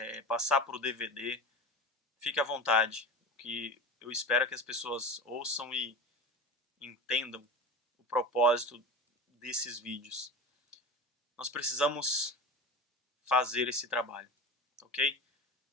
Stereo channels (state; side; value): normal; both; correlation 0.30